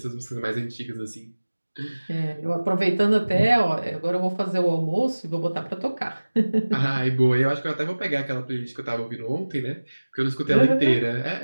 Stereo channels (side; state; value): both; inverted; correlation -1.00